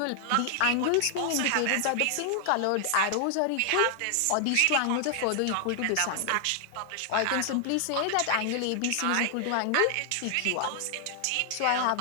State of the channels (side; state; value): both; different; correlation 0.00